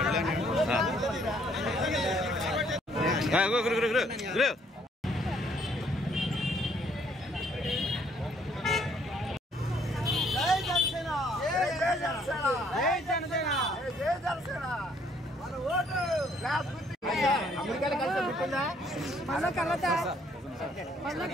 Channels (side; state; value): both; normal; correlation 0.65